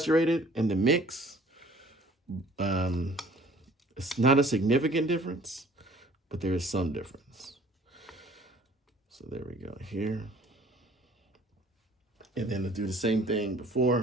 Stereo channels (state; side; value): normal; both; correlation 0.53